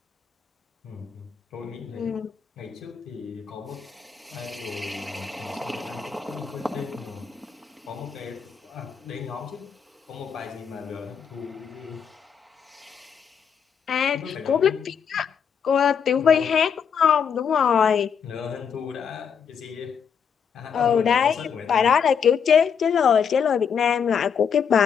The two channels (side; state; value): right; quieter; 7.1 dB